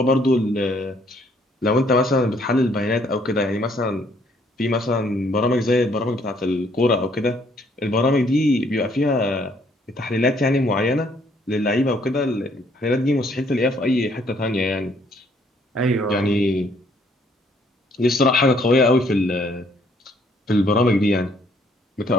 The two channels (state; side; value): normal; both; correlation 0.66